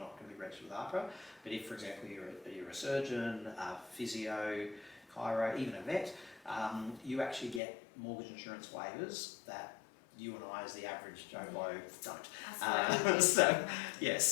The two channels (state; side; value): drops out; right; at 7.6 s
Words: going to be registered with AHPRA. But if, for example, you're a surgeon, a physio, chiro, even a vet, you actually get mortgage insurance waivers that you and I, as the average Joe Blow, don't. So